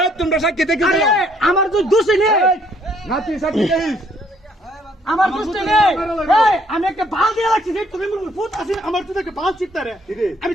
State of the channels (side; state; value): both; normal; correlation 0.65